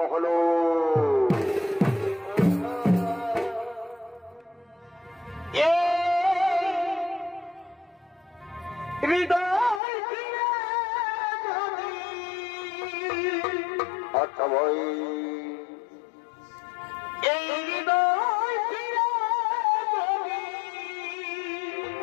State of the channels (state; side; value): drops out; right; at 9.8 s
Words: হলো। আচ্ছা ভাই, এই হৃদয়